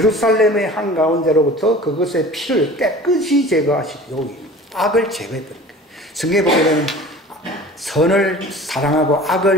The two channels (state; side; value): normal; both; correlation 0.42